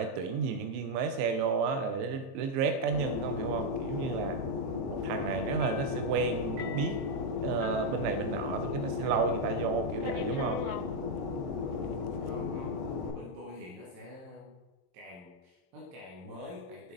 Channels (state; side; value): late; left; 23 ms